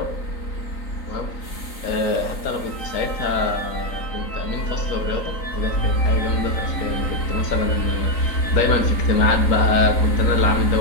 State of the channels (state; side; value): late; right; 3.9 ms